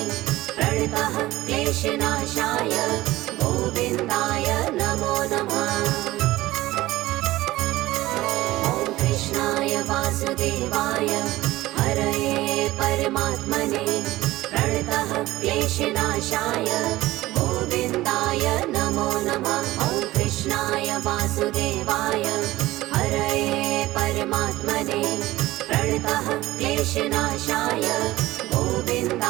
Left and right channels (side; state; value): left; quieter; 17.3 dB